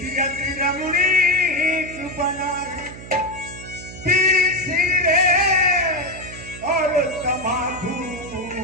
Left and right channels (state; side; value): noise; right; hum, 14 dB below the sound